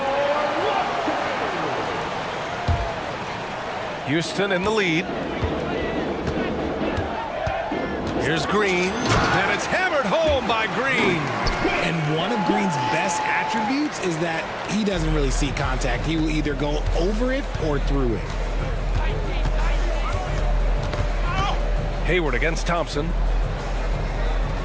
Houston in the lead. Here's Green, and it's hammered home by Green. And one of Green's best attributes is that he doesn't really see contact. He will either go over it or through it. Hayward against Thompson.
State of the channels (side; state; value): both; identical; correlation 1.00